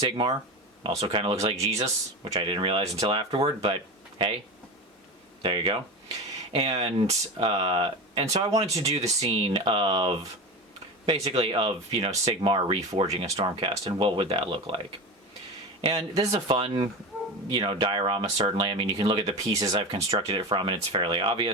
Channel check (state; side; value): normal; both; correlation 0.25